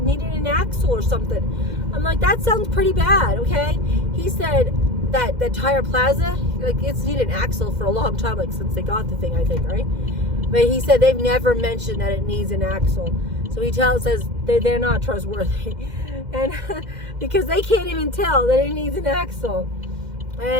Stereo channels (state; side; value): late; left; 2.0 ms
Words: needed an axle or something. I'm like, that sounds pretty bad, okay? He said that Tire Plaza, like, it's needed an axle for a long time, like, since they got the thing, I think, right? But he said they've never mentioned that it needs an axle. So he says they're not trustworthy. And because they can't even tell that it needs an axle.